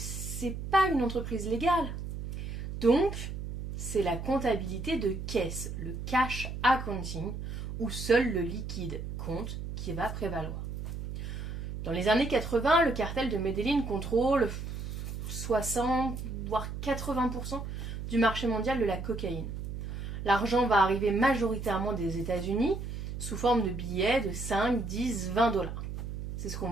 pas une entreprise légale. Donc, c'est la comptabilité de caisse, le cash accounting, où seul le liquide compte, qui va prévaloir. Dans les années 80, le cartel de Medellín contrôle 60 voire 80% du marché mondial de la cocaïne. L'argent va arriver majoritairement des États-Unis sous forme de billets de 5, 10, 20 dollars. C'est ce qu'on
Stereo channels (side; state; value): right; noise; hum, 6 dB below the sound